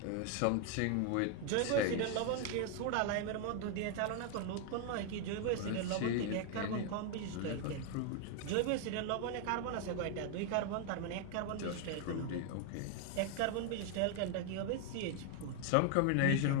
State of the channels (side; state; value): both; different; correlation 0.00